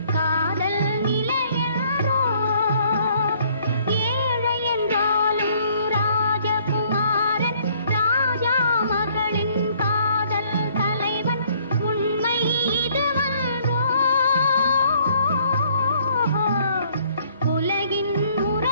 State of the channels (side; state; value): both; inverted; correlation -0.62